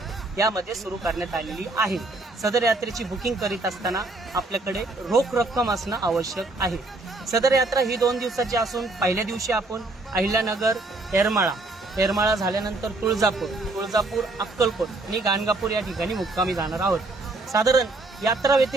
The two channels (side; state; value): left; quieter; 3.1 dB